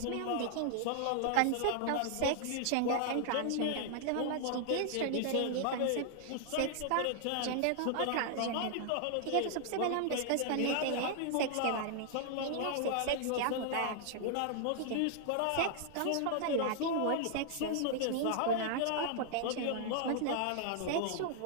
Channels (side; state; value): both; different; correlation -0.01